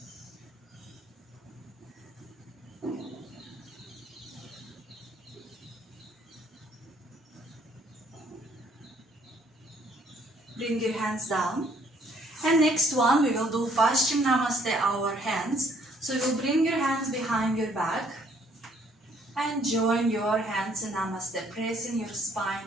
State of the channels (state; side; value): normal; both; correlation 0.64